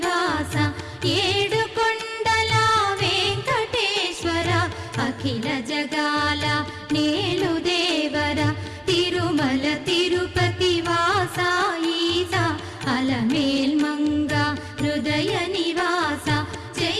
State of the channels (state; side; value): identical; both; correlation 1.00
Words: ఏడుకొండల వెంకటేశ్వర అఖిల జగాల నేలు దేవర తిరుమల తిరుపతి వాస ఈస అలమేల్మంగ హృదయ నివాస